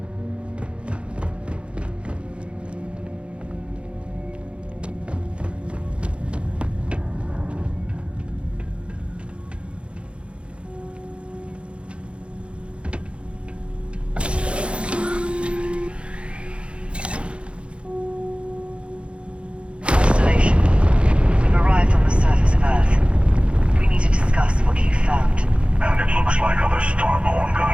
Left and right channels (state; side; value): late; left; 0.058 ms